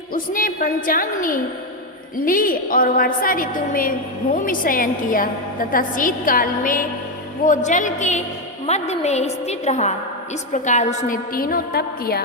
उसने पंचाग्नि ली और वर्षा ऋतु में भूमि शयन किया तथा शीतकाल में वो जल के मध्य में स्थित रहा। इस प्रकार उसने तीनों तप किया,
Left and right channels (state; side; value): normal; both; correlation 0.08